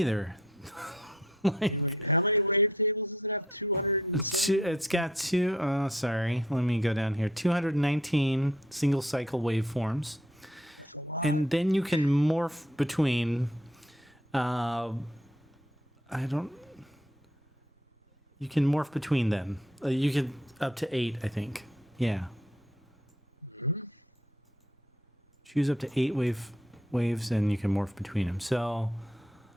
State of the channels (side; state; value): both; normal; correlation 0.65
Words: Like it's got two. Oh, sorry. Let me go down here. 219 single cycle waveforms, and then you can morph between. You can morph between them. You can up to 8, I think. Yeah. Choose up to 8 waves, and you can morph between them. So,